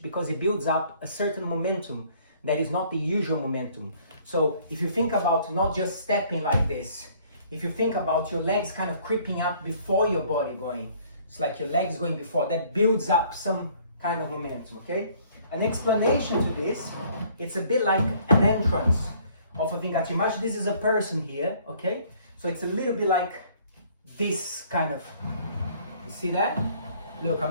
because it builds up a certain momentum that is not the usual momentum. So if you think about not just stepping like this, if you think about your legs kind of creeping up before your body going, it's like your legs going before, that builds up some kind of momentum, okay? An explanation to this, it's a bit like an entrance of a vingate. Imagine this is a person here, okay? So it's a little bit like this kind of, you see that? Look,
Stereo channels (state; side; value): inverted; both; correlation -0.59